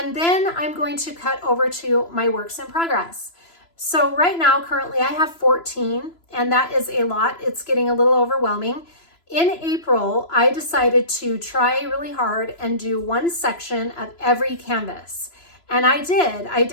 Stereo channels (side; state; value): right; late; 3.0 ms